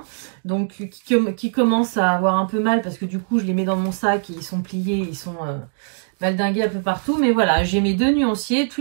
donc qui commencent à avoir un peu mal parce que du coup je les mets dans mon sac et ils sont pliés, ils sont valdingués un peu partout. Mais voilà, j'ai mes deux nuanciers,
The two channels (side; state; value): left; silent; digital silence